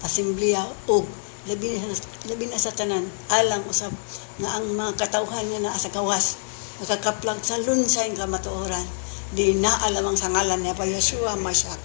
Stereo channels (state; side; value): silent; right; 62 dB below the other